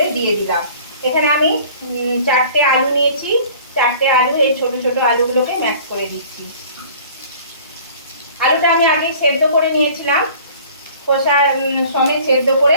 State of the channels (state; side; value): inverted; both; correlation -0.48